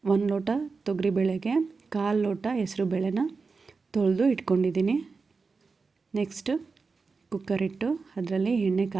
1 ಲೋಟ ತೊಗರಿಬೇಳೆಗೆ 1/4 ಲೋಟ ಹೆಸರುಬೇಳೆನ ತೊಳೆದು ಇಟ್ಕೊಂಡಿದ್ದೀನಿ. ನೆಕ್ಸ್ಟು ಕುಕ್ಕರ್ ಇಟ್ಟು ಅದರಲ್ಲಿ ಎಣ್ಣೆ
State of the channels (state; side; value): quieter; left; 4.5 dB